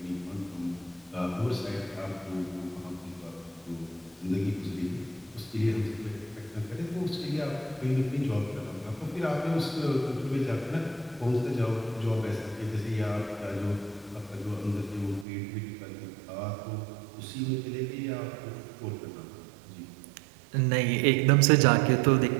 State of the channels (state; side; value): drops out; left; at 15.2 s